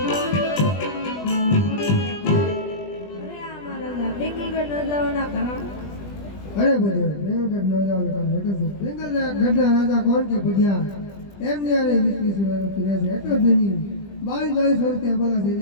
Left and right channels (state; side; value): late; right; 20 ms